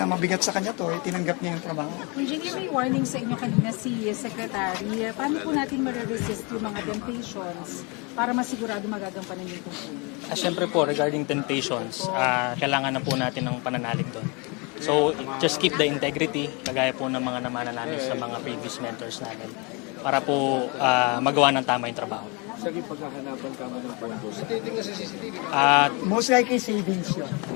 mabigat sa kanya to, tinanggap niya yung trabaho. Engineer, may warning sa inyo kanina si Secretary. Paano po natin ma-resist yung mga temptations para masigurado magagampanan yung tungkulin? Siyempre po, regarding temptations, kailangan na po natin ng pananalig doon. So, just keep the integrity, kagaya po ng mga namana namin sa mga previous mentors namin. para po magawa ng tama yung trabaho. Sa pagkahanapan ka mo ng pondo sa At Most likely savings yun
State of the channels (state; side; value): quieter; right; 30.5 dB